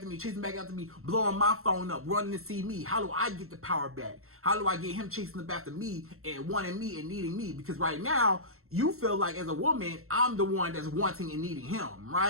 me, chasing back after me, blowing my phone up, running to see me? How do I get the power back? How do I get him chasing up after me and wanting me and needing me? Because right now, you feel like as a woman, I'm the one that's wanting and needing him,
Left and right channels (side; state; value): left; late; 0.63 ms